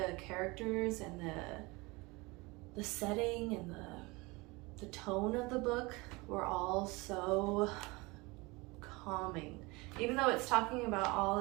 characters and the setting and the tone of the book were all so calming. Even though it's talking about all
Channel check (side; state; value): left; quieter; 24.6 dB